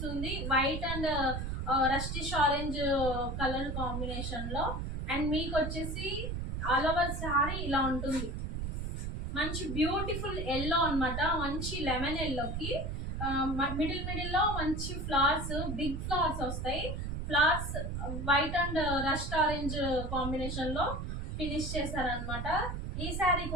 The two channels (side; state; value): right; noise; rumble, 3 dB below the sound